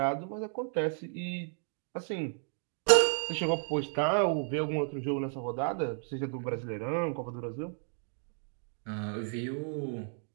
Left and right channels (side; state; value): left; silent; 56 dB below the other